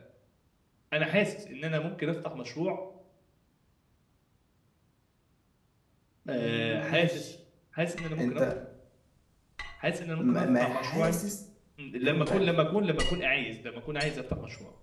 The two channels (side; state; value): both; identical; correlation 1.00